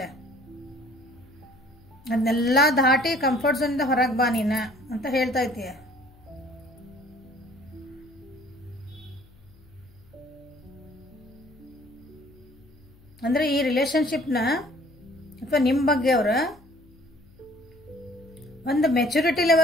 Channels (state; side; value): noise; left; hum, 26 dB below the sound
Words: ಅದನ್ನೆಲ್ಲ ದಾಟಿ ಕಂಫರ್ಟ್ ಝೋನಿಂದ ಹೊರಗೆ ಬಾ ನೀನ ಅಂತ ಹೇಳ್ತೈತಿ. ಅಂದ್ರೆ ಈ ರಿಲೇಶನ್ಶಿಪ್ನ ಅಥವಾ ನಿಮ್ಮ ಬಗ್ಗೆ ಅವ್ರ ಒಂದು ಮೆಚುರಿಟಿ